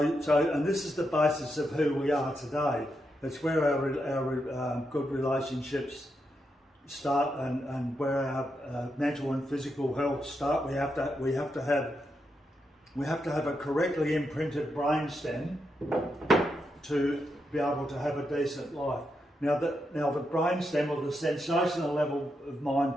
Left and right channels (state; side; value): normal; both; correlation 0.83